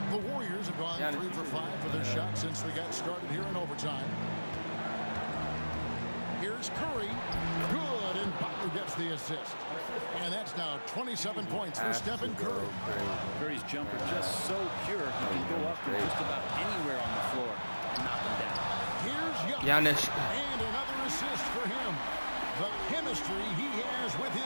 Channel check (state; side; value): inverted; both; correlation -1.00